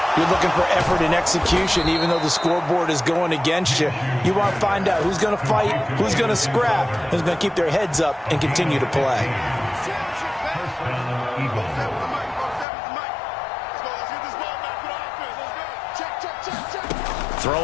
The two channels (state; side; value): drops out; right; at 12.7 s